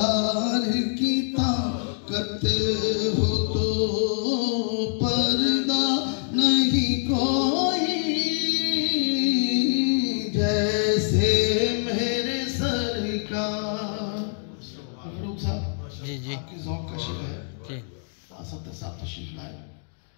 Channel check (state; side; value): silent; right; 62 dB below the other